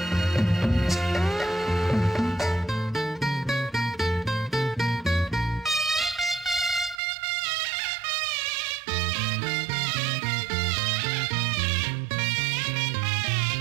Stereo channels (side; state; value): left; drops out; at 7.0 s